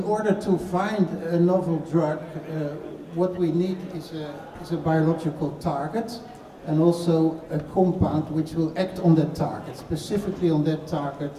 order to find a novel drug, what we need is a biological target and also a compound which will act on that target, specifically on that target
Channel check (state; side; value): identical; both; correlation 1.00